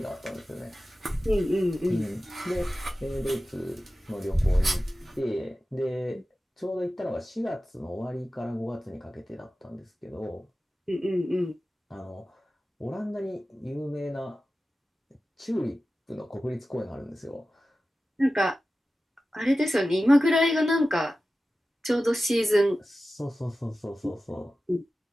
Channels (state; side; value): normal; both; correlation 0.94